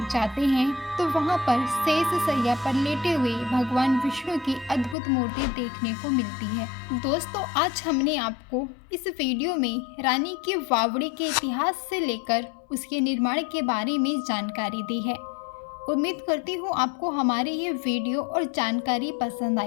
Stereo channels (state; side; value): drops out; right; at 5.0 s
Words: जाते हैं तो वहां पर शेष शैया पर लेटे हुए भगवान विष्णु की अद्भुत मूर्ति देखने को मिलती है। दोस्तों, आज हमने आपको इस वीडियो में रानी की बावड़ी के इतिहास से लेकर उसके निर्माण के बारे में जानकारी दी है। उम्मीद करती हूँ आपको हमारी ये वीडियो और जानकारी पसंद